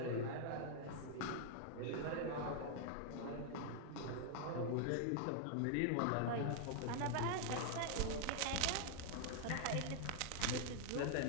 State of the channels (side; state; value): both; different; correlation 0.00